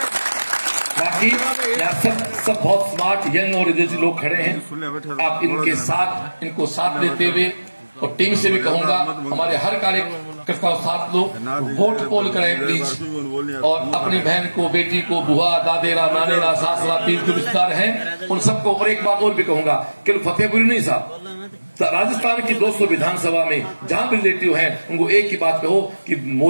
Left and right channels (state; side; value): inverted; both; correlation -1.00